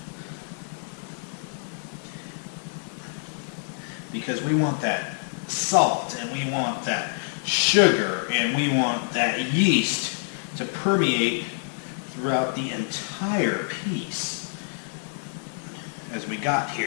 because we want that salt and we want that sugar and we want that yeast to permeate throughout the entire piece as we got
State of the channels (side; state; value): right; silent; digital silence